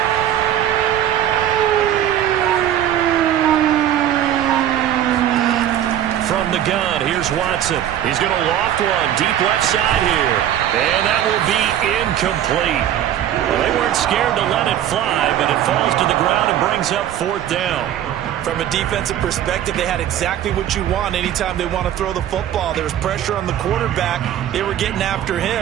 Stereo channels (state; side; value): quieter; left; 11.1 dB